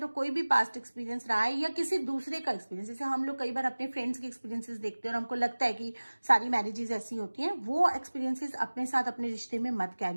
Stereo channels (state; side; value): inverted; both; correlation -1.00